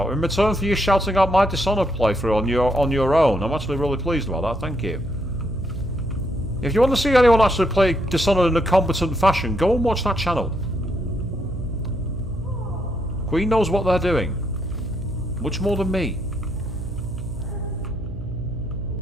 In return for you shouting out my Dishonored playthrough on your own. I'm actually really pleased about that, thank you. If you want to see anyone actually play Dishonored in a competent fashion, go and watch that channel. Queen knows what they're doing. Much more than me.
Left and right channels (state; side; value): noise; right; hum, 9 dB below the sound